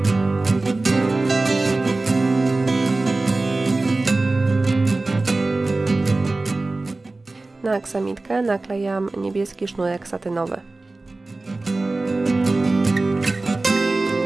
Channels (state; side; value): quieter; left; 3.2 dB